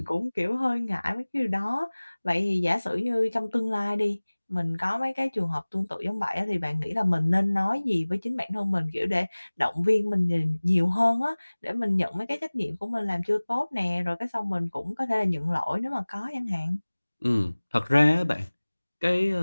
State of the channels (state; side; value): inverted; both; correlation -1.00